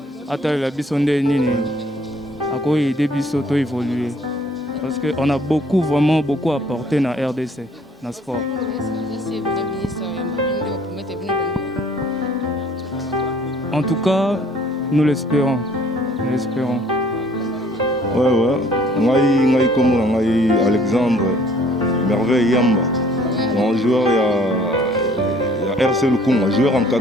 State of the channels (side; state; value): both; normal; correlation 0.57